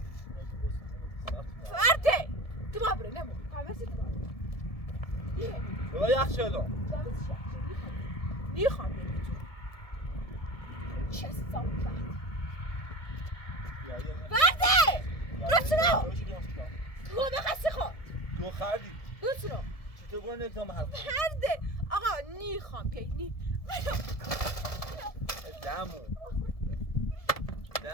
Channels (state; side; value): late; right; 1.7 ms